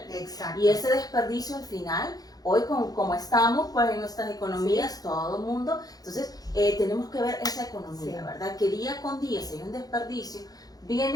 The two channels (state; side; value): late; right; 0.18 ms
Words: Exacto. Y ese desperdicio al final, hoy como estamos pues en nuestras economías, todo el mundo, entonces tenemos que ver esa economía, ¿verdad? Que día con día, si hay un desperdicio,